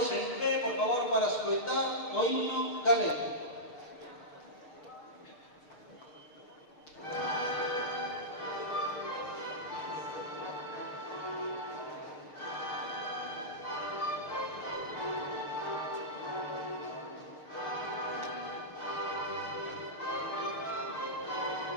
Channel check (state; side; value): late; right; 6.6 ms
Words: en pé, por favor, para escoitar o himno galego.